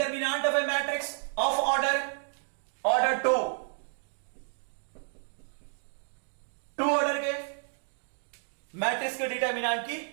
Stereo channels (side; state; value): left; silent; digital silence